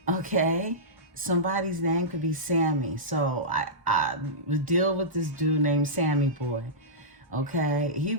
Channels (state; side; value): normal; both; correlation -0.15